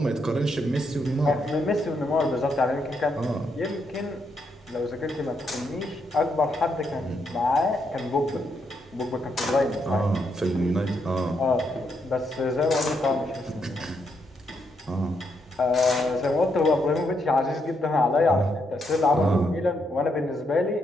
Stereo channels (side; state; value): both; normal; correlation 0.78